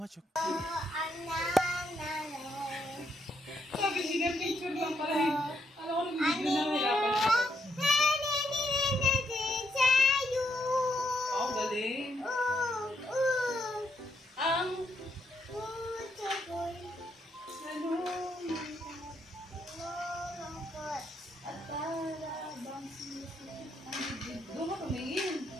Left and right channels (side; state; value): both; normal; correlation 0.76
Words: Sabi siya, picture lang pala. Alam ko, nahihirapan ako. Oh, galing. Ang doon ka tumingin.